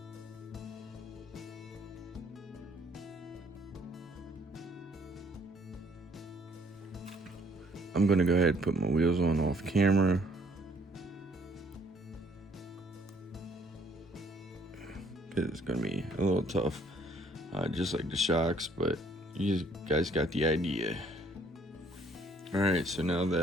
I'm gonna go ahead and put my wheels on off camera. It's gonna be a little tough, just like the shocks, but you guys got the idea. All right, so now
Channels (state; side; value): normal; both; correlation 0.63